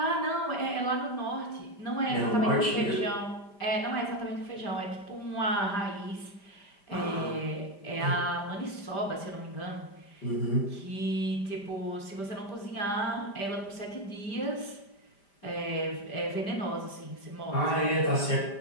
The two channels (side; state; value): right; late; 5.0 ms